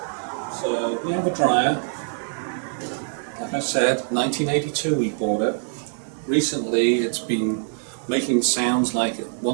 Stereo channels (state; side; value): silent; left; digital silence